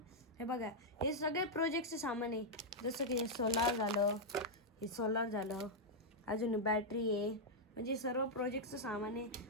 हे बघा हे सगळे प्रोजेक्टचे सामान आहे जसं की हे सोलार झालं अजून बॅटरी आहे म्हणजे सर्व प्रोजेक्टचं सामान आहे.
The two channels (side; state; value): both; normal; correlation -0.05